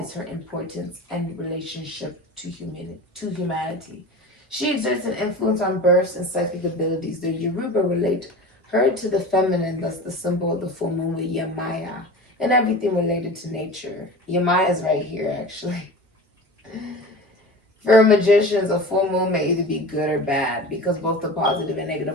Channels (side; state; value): both; normal; correlation 0.34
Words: her importance and relationship to humanity. She exerts an influence on births and psychic abilities. The Yoruba relate her to the feminine, thus the symbol of the full moon with Yemaya, and everything related to nature. Yemaya is right here, actually. For magicians, a full moon may either be good or bad because both the positive and